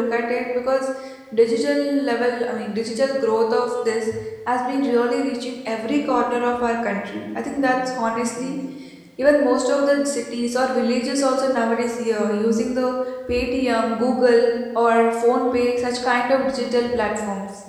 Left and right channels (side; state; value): both; identical; correlation 1.00